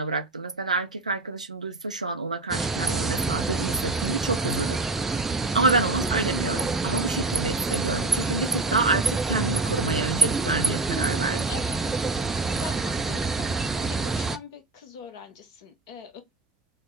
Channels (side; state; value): left; quieter; 3.2 dB